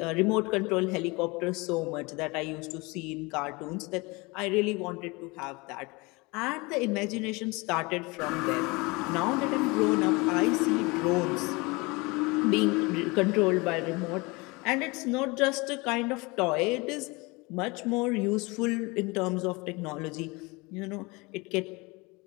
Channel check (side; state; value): right; quieter; 25.6 dB